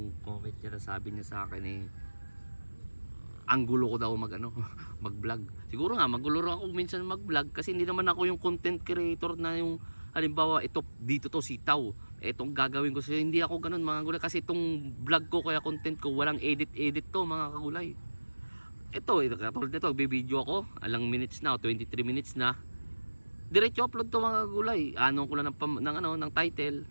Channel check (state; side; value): inverted; both; correlation -1.00